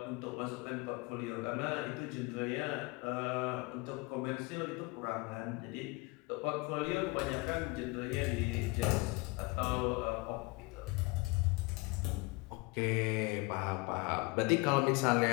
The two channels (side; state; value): right; quieter; 25.8 dB